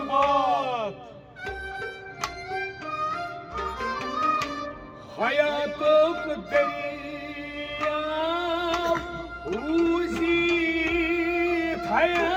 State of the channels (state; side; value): identical; both; correlation 1.00